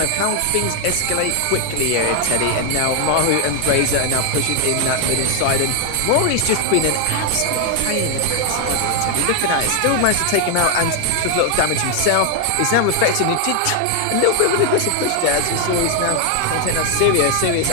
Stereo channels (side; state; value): both; different; correlation 0.00